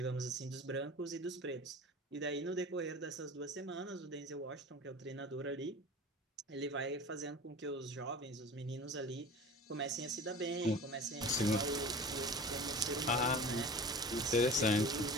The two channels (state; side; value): normal; both; correlation 0.38